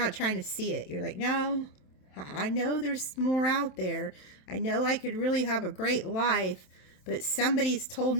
trying to see it. You're like, no, I know there's more out there. I know I could really have a great life, but somebody's told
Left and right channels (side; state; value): right; late; 27 ms